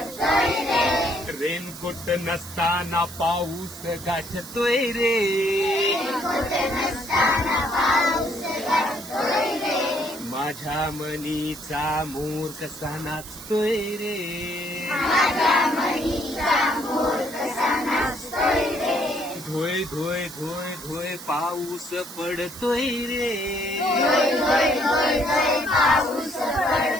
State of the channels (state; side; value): noise; right; hiss, 14 dB below the sound